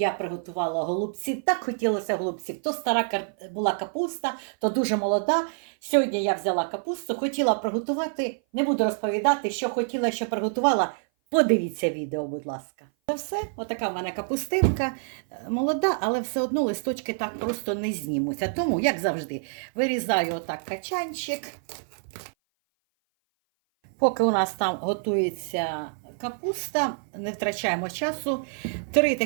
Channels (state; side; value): silent; left; 57 dB below the other